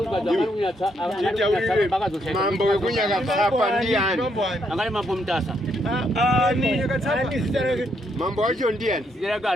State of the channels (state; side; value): normal; both; correlation 0.75